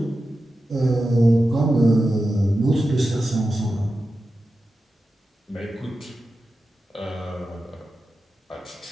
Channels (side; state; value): both; normal; correlation 0.92